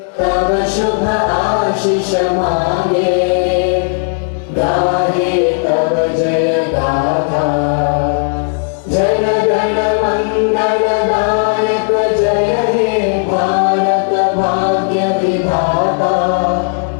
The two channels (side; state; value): right; silent; digital silence